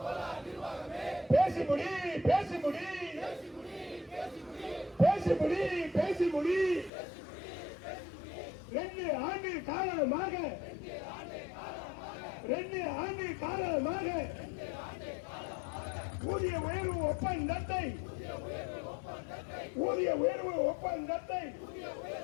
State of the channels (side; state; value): right; drops out; at 6.9 s